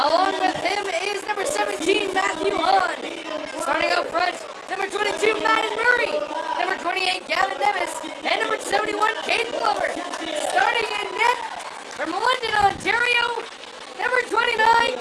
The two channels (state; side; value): identical; both; correlation 1.00